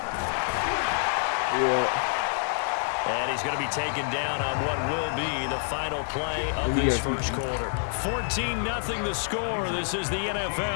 Yeah. And he's going to be taken down on what will be the final play of this first quarter. 14-0 the score. This is the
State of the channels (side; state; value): right; silent; digital silence